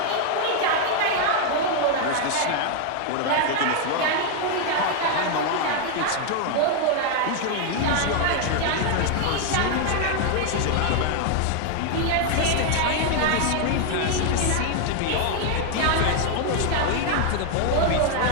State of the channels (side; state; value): both; different; correlation 0.00